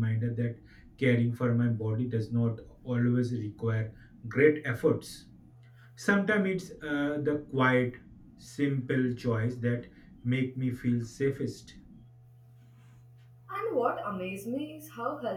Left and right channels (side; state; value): both; identical; correlation 1.00